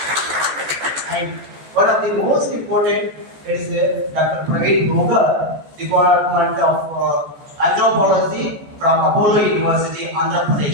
And one of the most important is Dr. Praveen Bhoga, Department of Anthropology from Apollo University, Andhra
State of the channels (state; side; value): late; left; 14 ms